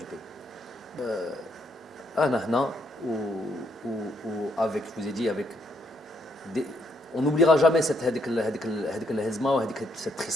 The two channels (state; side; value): normal; both; correlation 0.74